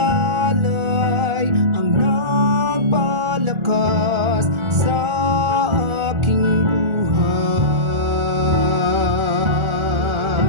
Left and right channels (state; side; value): late; left; 1.4 ms